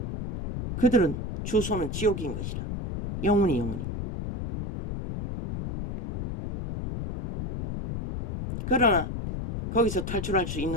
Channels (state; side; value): noise; left; rumble, 5 dB below the sound